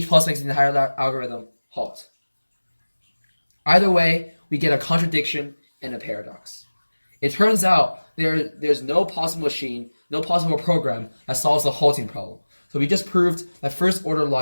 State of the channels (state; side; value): inverted; both; correlation -1.00